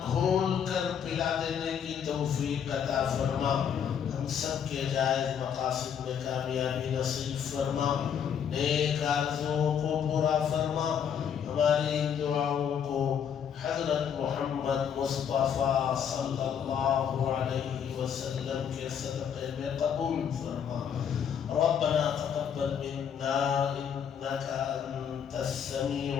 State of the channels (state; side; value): quieter; right; 8.1 dB